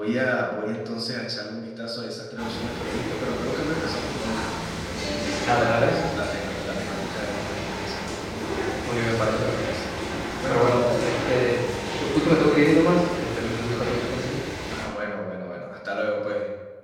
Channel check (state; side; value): identical; both; correlation 1.00